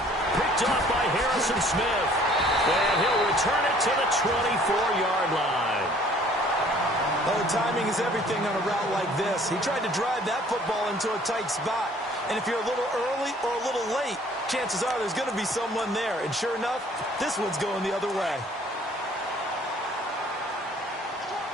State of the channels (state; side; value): normal; both; correlation 0.56